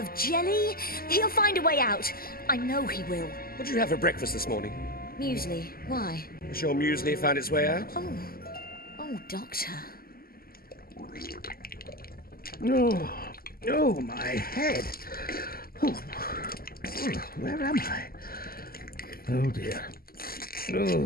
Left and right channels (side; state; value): right; late; 0.43 ms